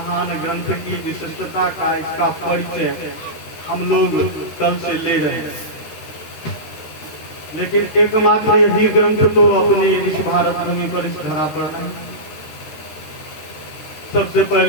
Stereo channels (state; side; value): late; right; 13 ms